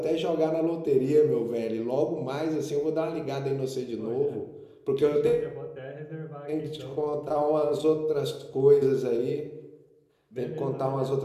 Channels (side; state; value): both; identical; correlation 1.00